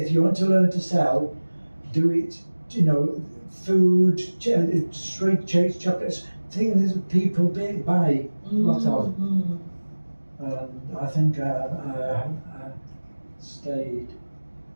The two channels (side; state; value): both; inverted; correlation -1.00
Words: you want to learn to sell, do it, food, straight chocolates, things that people buy a lot of. And I think I stayed